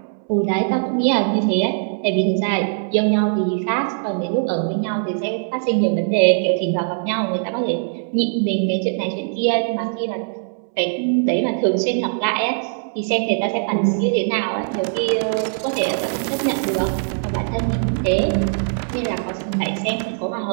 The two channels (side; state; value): left; silent; 65 dB below the other